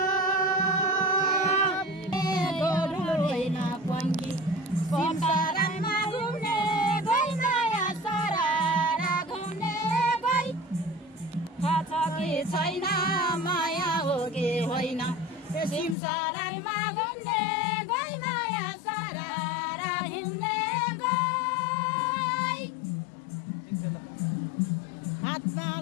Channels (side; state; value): right; drops out; at 16.0 s